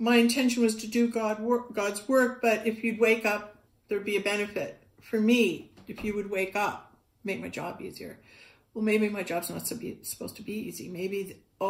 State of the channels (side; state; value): both; identical; correlation 1.00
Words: intention was to do God's work, but if you'd wake up, there'd be a benefit for me if you would wake up, make my job easier. Well, maybe my job's not supposed to be easy. Maybe